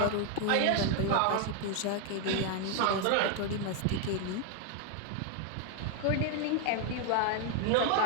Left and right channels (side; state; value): both; different; correlation 0.01